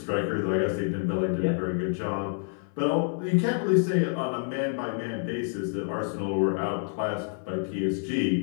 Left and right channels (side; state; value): right; silent; 56 dB below the other